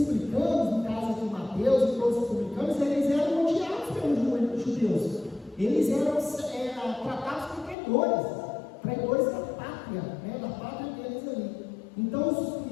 no caso aqui Mateus e todos os publicanos, eles eram odiados pelos judeus. Eles eram tratados como traidores da pátria, né? Da pátria deles ali. Então,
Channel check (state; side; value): drops out; right; at 7.8 s